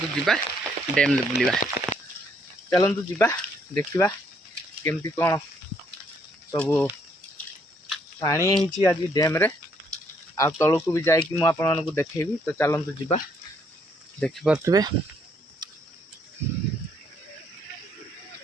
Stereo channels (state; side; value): normal; both; correlation 0.69